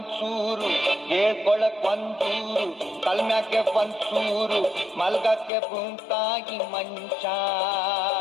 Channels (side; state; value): right; drops out; at 5.5 s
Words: ಹೇಳ್ಕೊಳಕ್ ಒಂದೂರು ಕಲ್ಮ್ಯಾಗೆ ಒಂದ್ಸೂರು, ಮಲ್ಗಕ್ಕೆ ಭೂಮ್ತಾಗಿ ಮಂಚ.